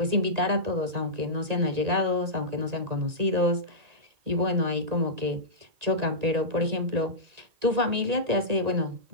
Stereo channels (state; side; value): late; left; 1.9 ms